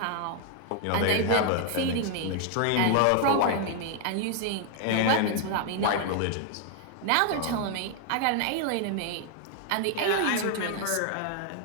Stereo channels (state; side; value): different; both; correlation 0.00